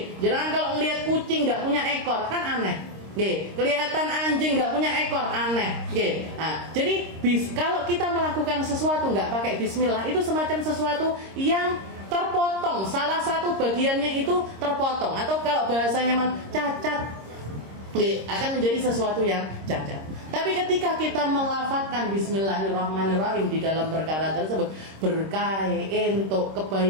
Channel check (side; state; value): left; late; 26 ms